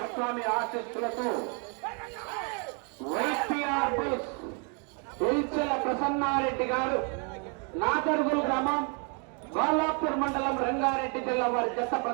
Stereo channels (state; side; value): quieter; left; 37.6 dB